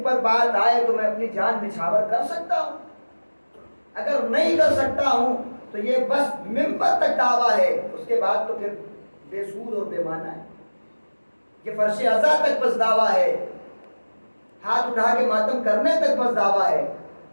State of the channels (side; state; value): both; inverted; correlation -1.00